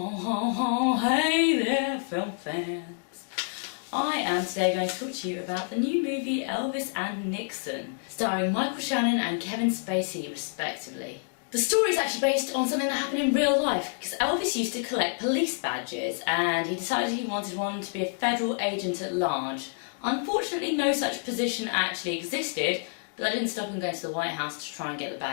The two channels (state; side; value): silent; right; digital silence